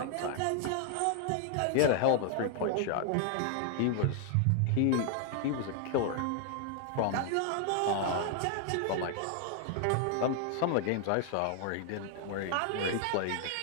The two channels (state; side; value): different; both; correlation 0.00